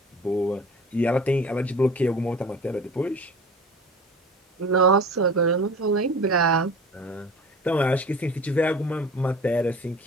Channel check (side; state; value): both; normal; correlation 0.40